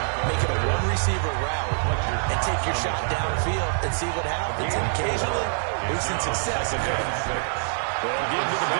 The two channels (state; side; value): silent; left; digital silence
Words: make it a one-receiver route, and take your shot downfield and see what happens. And occasionally, we've seen success. Well, give to the